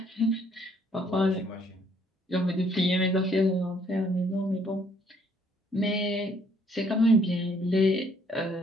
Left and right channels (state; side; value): normal; both; correlation 0.64